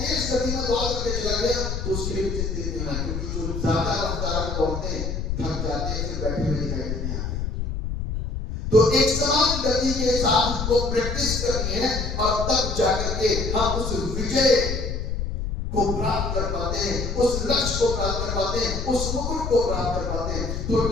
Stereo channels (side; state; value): left; noise; rumble, 3 dB below the sound